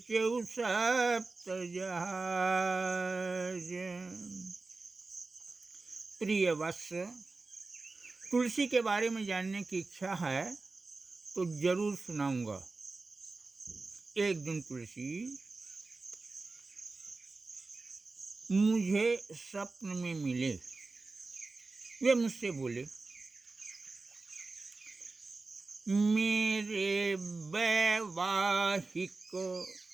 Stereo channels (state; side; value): quieter; left; 3.7 dB